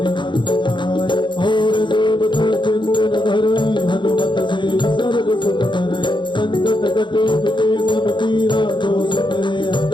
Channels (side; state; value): right; late; 0.23 ms